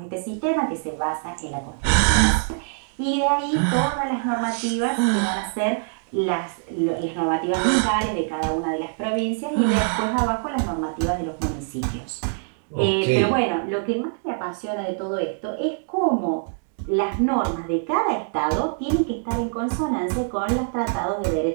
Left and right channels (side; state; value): left; silent; digital silence